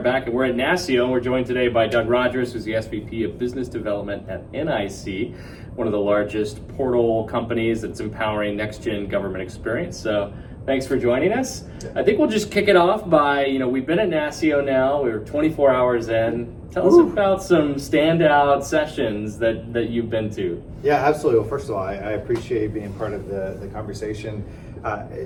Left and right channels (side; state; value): both; identical; correlation 1.00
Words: back, and we're at NASCIO, and we're joined today by Doug Rogers, who's the SVP of Business Development at NIC, one of the largest portal companies that's empowering next-gen government experience. So thanks for joining us. I think we'll just kick it off by, we've been at NASCIO now, we're 24 hours in. Tell us about some standout sessions that you've been to. Yeah, absolutely. Well, first of all, I appreciate being part of the conversation.